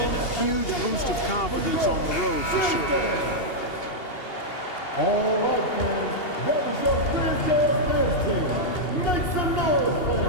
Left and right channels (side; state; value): right; late; 2.8 ms